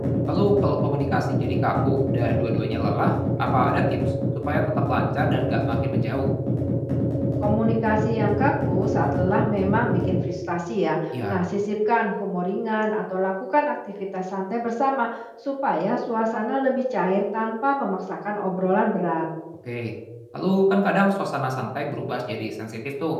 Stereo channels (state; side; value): identical; both; correlation 1.00